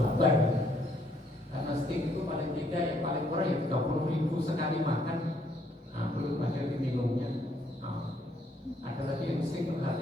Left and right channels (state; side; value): normal; both; correlation 0.69